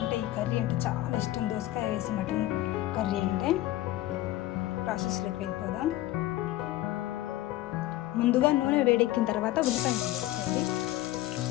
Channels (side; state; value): right; quieter; 15.5 dB